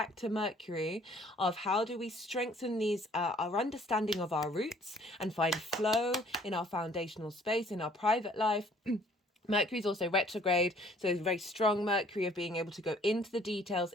to Mercury of how do we strengthen these our understanding of our roots and find flow in our foundational space, in our private life. Mercury is also retrograde, so it's a very strong Mercury of being able to go into the details,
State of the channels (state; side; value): normal; both; correlation 0.58